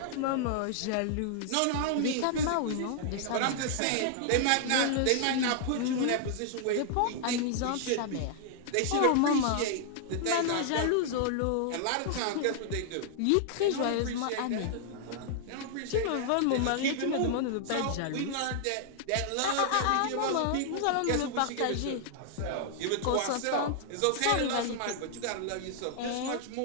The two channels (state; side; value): different; both; correlation -0.01